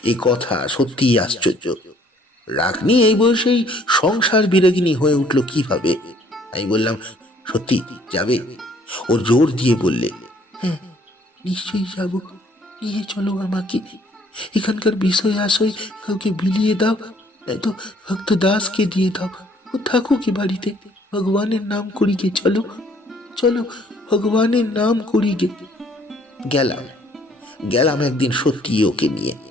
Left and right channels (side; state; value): both; normal; correlation 0.61